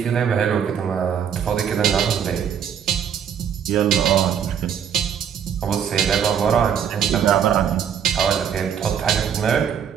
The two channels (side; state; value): left; quieter; 8.2 dB